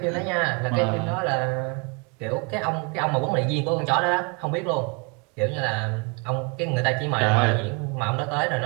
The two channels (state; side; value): quieter; left; 32.4 dB